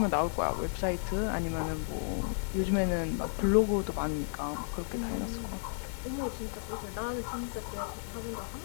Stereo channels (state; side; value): silent; right; 56 dB below the other